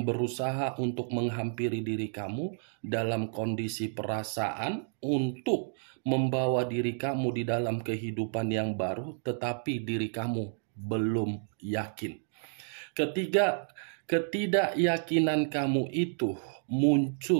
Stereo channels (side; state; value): left; silent; digital silence